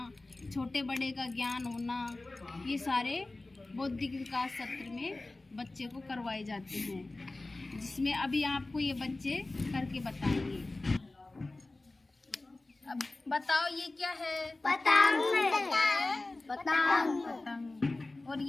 छोटे बड़े का ज्ञान होना, ये सारे बौद्धिक विकास सत्र में बच्चे को करवाए जाते हैं, जिसमें अभी आपको ये बच्चे करके बताएंगे। अब बताओ ये क्या है? पतंग। और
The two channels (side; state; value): right; quieter; 3.0 dB